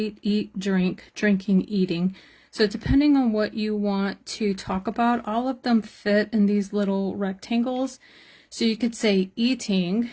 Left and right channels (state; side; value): identical; both; correlation 1.00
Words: eat, drink, drinking, eating. So depending on what you want to talk about, all of them fit in these little rectangles. So you could say eating